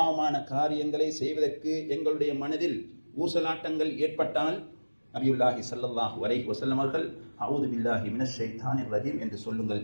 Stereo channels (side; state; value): both; inverted; correlation -1.00